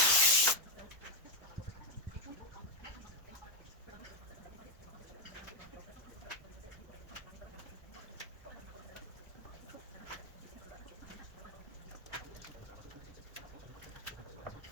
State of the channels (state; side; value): normal; both; correlation 0.04